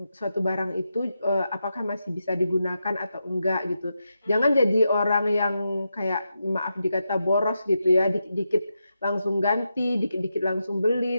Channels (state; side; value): inverted; both; correlation -0.87